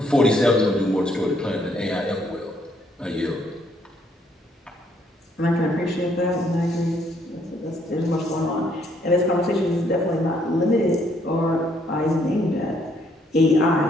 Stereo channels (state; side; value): normal; both; correlation 0.69